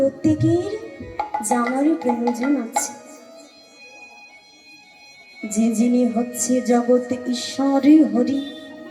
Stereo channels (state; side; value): identical; both; correlation 1.00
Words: জানার প্রয়োজন আছে যে যিনি হচ্ছে জগৎ ঈশ্বর হরি,